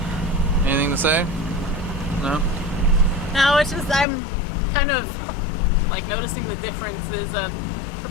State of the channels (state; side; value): drops out; right; at 4.0 s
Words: Anything to say? No? No, it's just I'm kind of like noticing the differences of